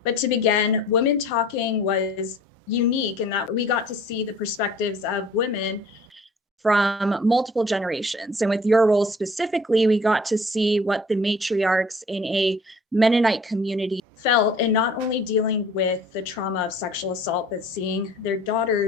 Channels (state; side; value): normal; both; correlation 0.50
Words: But to begin, Women Talking was unique in that we got to see the perspectives of women from multiple generations. And with your role specifically, we got to see what the matriarchs in a Mennonite community felt, and not only dealing with the trauma of sexual assault, but seeing their